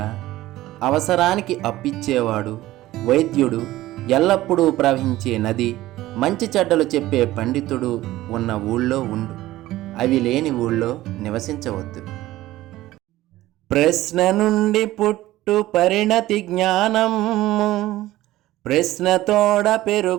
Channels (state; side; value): quieter; left; 16.1 dB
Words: అవసరానికి అప్పిచ్చేవాడు వైద్యుడు, ఎల్లప్పుడూ ప్రవహించే నది, మంచి చెడ్డలు చెప్పే పండితుడు ఉన్న ఊళ్ళో ఉండు, అవి లేని ఊళ్ళో నివసించవద్దు. ప్రశ్న నుండి పుట్టు పరిణతి జ్ఞానము, ప్రశ్నతోడ